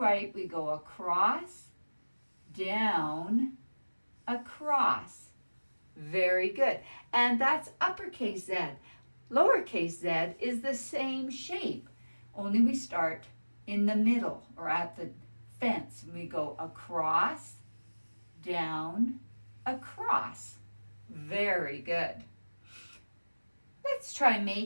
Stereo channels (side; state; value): both; inverted; correlation -1.00